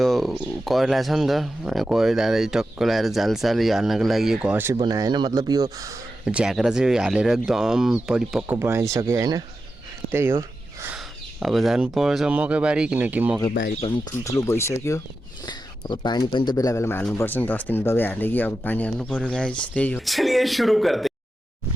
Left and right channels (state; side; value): normal; both; correlation 0.90